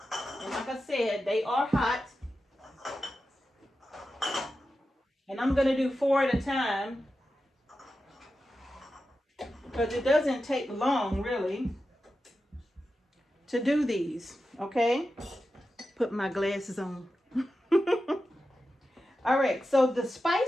like I said, they are hot. And I'm going to do 4 at a time, because it doesn't take long really to do these. Okay, put my glasses on. All right, so the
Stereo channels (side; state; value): both; normal; correlation 0.91